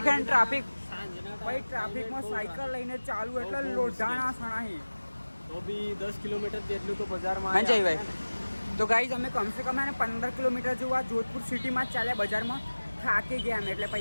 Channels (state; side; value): inverted; both; correlation -1.00